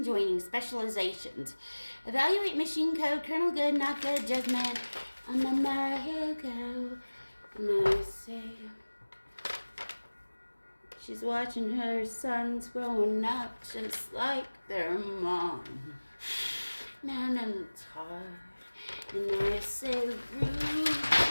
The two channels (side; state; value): both; inverted; correlation -1.00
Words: joining, specializations. Evaluate machine code, kernel good, not good, judgment. Here go. And I say, she's watching her sons growing up just like their mom. Man, I'm tired. And I say,